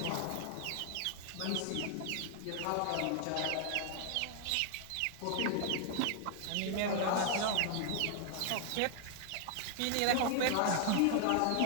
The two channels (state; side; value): different; both; correlation 0.00